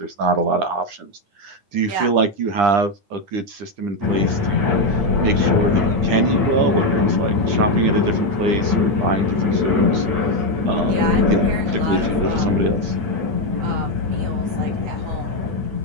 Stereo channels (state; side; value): late; left; 9.9 ms